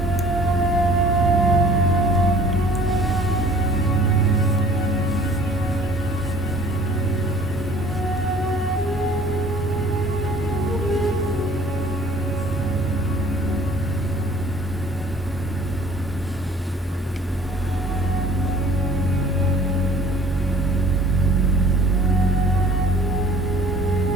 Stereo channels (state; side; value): normal; both; correlation 0.51